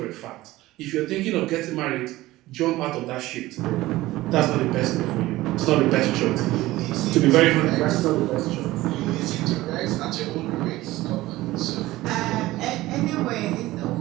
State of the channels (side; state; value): left; quieter; 17.5 dB